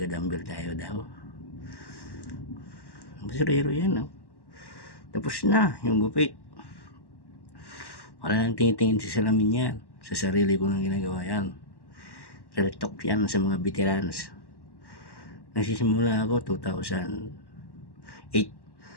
tayo daw. Basurero yan, no? Tapos na yung gupit. Wala nang tingin-tingin sa salamin yan. Sa sarili ko nang ginagawa yan. Real talk yan sa mga veterans. Nagsisimula ako 2008.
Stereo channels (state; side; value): late; right; 1.1 ms